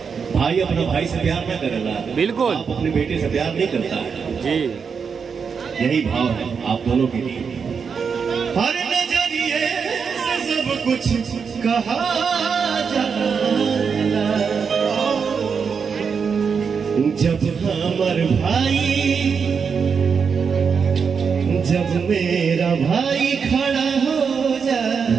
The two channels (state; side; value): quieter; left; 6.1 dB